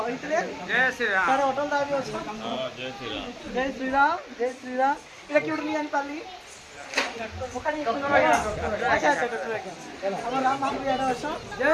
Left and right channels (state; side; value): identical; both; correlation 1.00